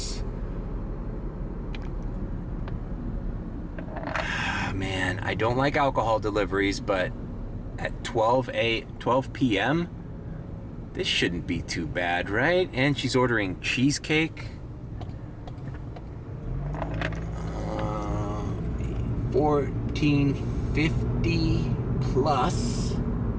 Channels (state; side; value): identical; both; correlation 1.00